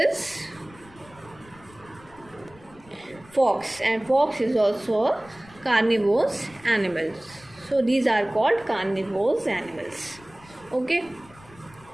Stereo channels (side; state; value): left; noise; rumble, 24 dB below the sound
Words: fox, and fox is also a carnivorous animal. So these are called carnivorous animals. Okay.